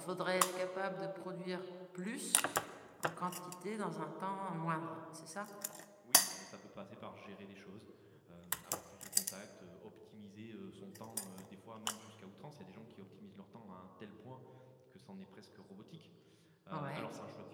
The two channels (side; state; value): both; identical; correlation 1.00